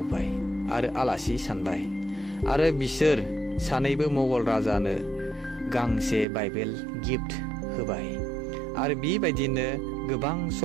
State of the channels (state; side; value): drops out; left; at 6.2 s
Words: आरो आलासि सानबाय आरो बिसोर सानैबो मुगल राजानो गांसे बाइबेल गिफ्ट होबाय आरो बेबायदिनो गोबां